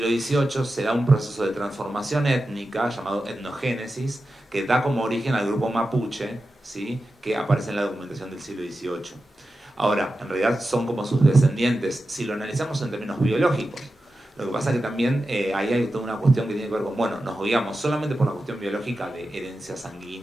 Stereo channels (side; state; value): both; normal; correlation 0.92